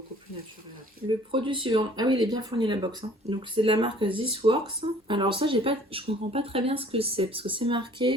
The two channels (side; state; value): both; normal; correlation 0.54